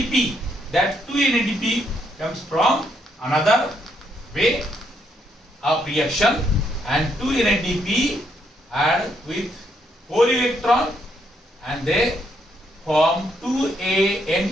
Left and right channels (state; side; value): normal; both; correlation 0.74